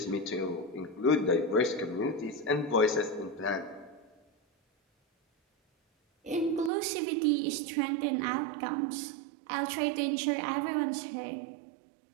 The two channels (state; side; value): drops out; left; at 6.7 s